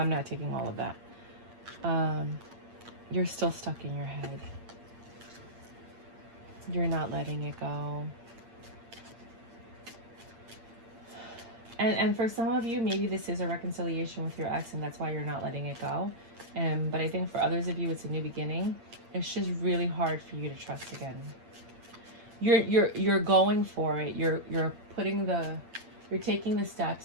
not taking all of that. You're still stuck in your head. You're not letting it go. And for some of you, maybe this is a reconciliation with your ex and that's why you're not letting it go. But I think for others of you, it's a new beginning. It's just really hard for you to trust again. You're going for it. You're taking the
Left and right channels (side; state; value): left; late; 8.7 ms